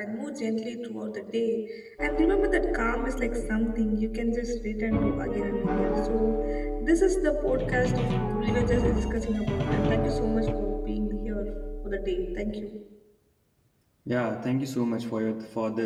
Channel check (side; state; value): both; identical; correlation 1.00